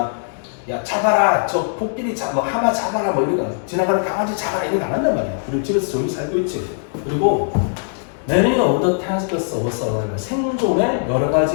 야, 잡아라, 저 코끼리 뭐 하마 잡아라, 뭐 이런 거 지나가는 강아지 잡아라 이런 거 안 한단 말이야. 그리고 집에서 조용히 살고 있지. 그리고 Many of the tasks of survival, 생존의 여러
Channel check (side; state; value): right; silent; digital silence